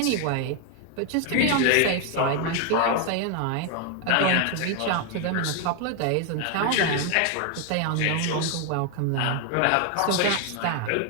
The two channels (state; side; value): different; both; correlation 0.01